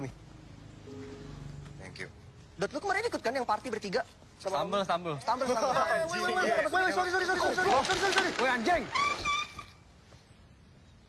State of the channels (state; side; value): identical; both; correlation 1.00